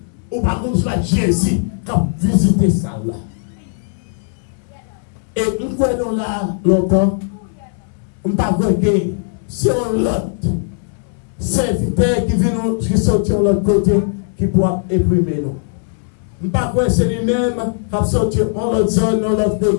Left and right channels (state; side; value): silent; right; 67 dB below the other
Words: on va voir Jésus qui a visité ça là. Et nous croyons là longtemps, on ne va pas que si on l'autre serviteur qui vient qui sortir de l'autre côté, qui pourra éprimer nous. On ne va pas que c'est lui-même qui a sorti en l'autre zone, dans l'autre